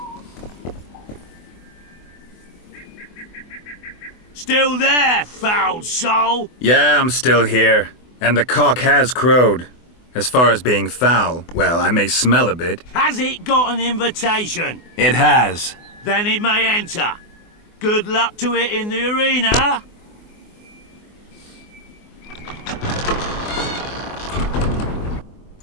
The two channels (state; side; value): late; right; 24 ms